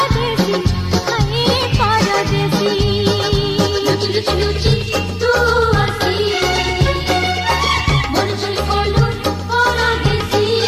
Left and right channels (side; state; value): both; identical; correlation 1.00